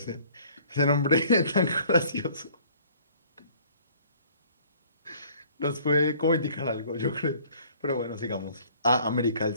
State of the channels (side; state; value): both; inverted; correlation -0.56